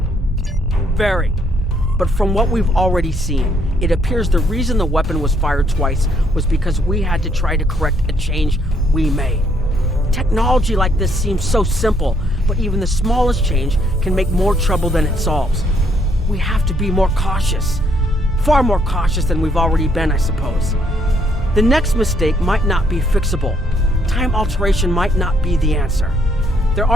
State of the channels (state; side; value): normal; both; correlation 0.69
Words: Very. But from what we've already seen, it appears the reason the weapon was fired twice was because we had to try to correct a change we made. Technology like this seems so simple, but even the smallest change can make more trouble than it solves. We have to be more cautious. Far more cautious than we've already been, I suppose. The next mistake might not be fixable. Time alteration might not be the answer. There